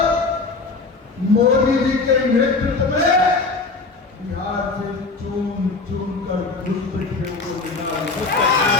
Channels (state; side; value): quieter; right; 3.9 dB